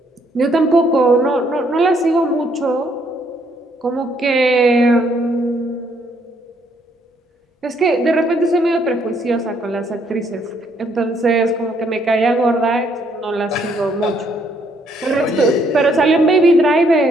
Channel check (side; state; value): both; normal; correlation 0.69